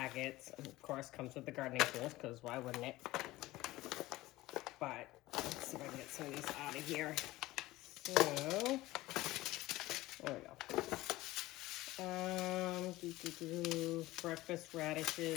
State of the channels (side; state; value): right; quieter; 18.1 dB